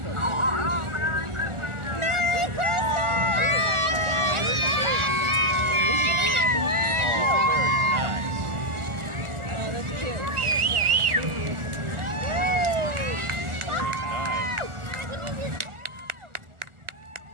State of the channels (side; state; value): left; late; 1.4 ms